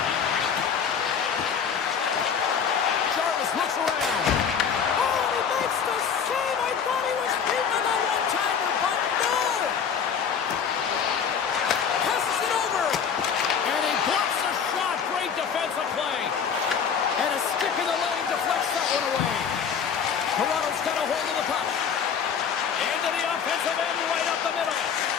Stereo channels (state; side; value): quieter; right; 7.1 dB